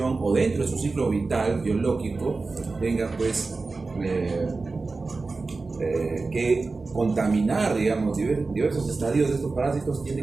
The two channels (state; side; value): quieter; left; 3.8 dB